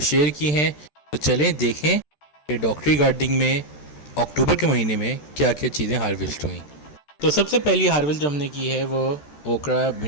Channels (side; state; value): right; late; 13 ms